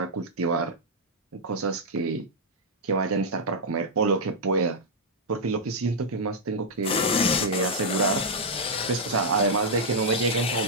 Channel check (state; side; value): normal; both; correlation -0.06